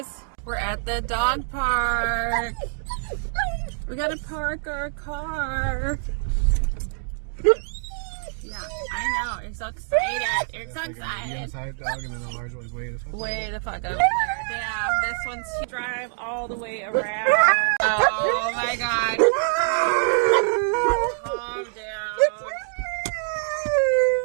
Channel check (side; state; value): left; silent; digital silence